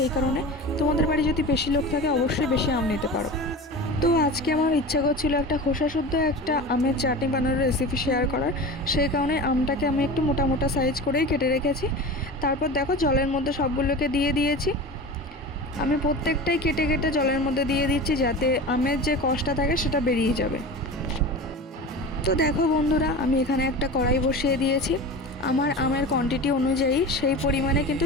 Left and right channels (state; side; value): normal; both; correlation 0.31